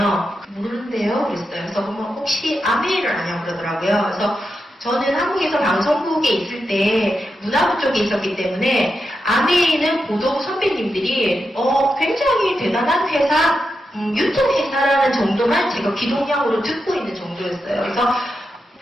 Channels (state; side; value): normal; both; correlation 0.87